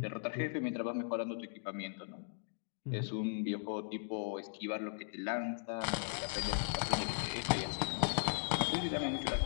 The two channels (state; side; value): silent; right; digital silence